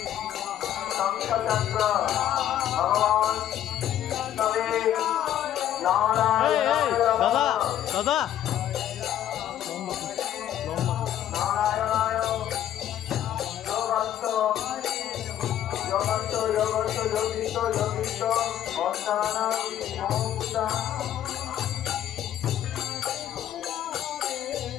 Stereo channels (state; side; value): quieter; right; 11.4 dB